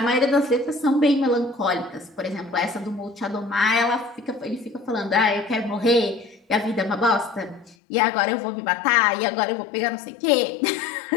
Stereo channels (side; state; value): right; drops out; at 7.8 s